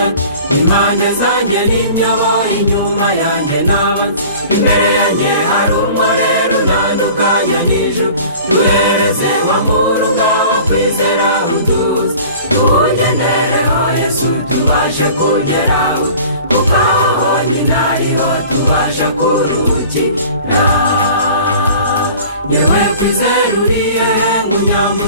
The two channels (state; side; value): inverted; both; correlation -0.44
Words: impande zanjye n'inyobo, inyuma yanjye n'abanzi, imbere yanjye hari umurere unandukanya n'ijuru. Duhereze wa murunga wo kwizera uduze, tuwugendereho Yesu tubashe kugeraho, kuko aho honyine ariho tubasha kuruhukira. Yewe kwizera uriye